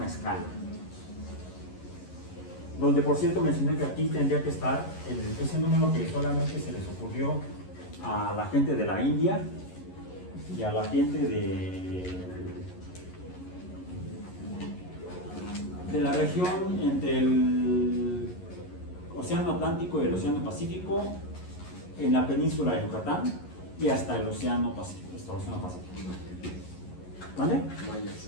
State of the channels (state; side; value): late; right; 11 ms